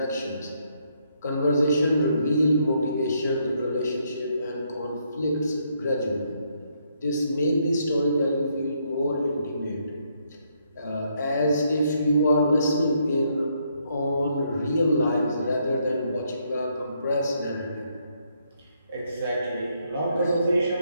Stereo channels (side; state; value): both; inverted; correlation -0.74